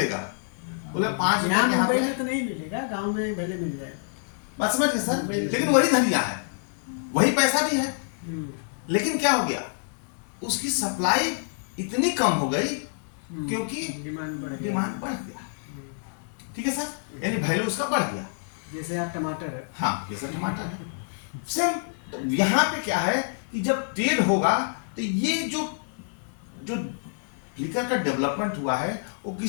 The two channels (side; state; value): right; silent; digital silence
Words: बोले 5 रुपए यहाँ यहाँ मुंबई पे। में तो नहीं मिलेगा, गांव में भले मिल जाए। बात समझ गए सर? लेकिन वही धनिया है, वही पैसा भी है, लेकिन क्या हो गया? उसकी सप्लाई इतनी कम हो गई क्योंकि डिमांड बढ़ गया। ठीक है सर? यानी वैल्यू उसका बढ़ गया। जैसे आप टमाटर है, हाँ जैसे टमाटर है सेम। तो यहाँ पे क्या है कि जब ट्रेड होगा तो ये जो फ्लिकर का डेवलपमेंट हुआ है वो